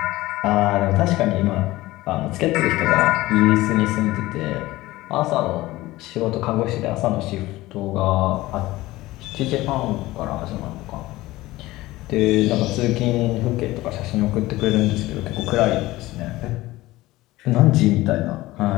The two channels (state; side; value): quieter; right; 18.1 dB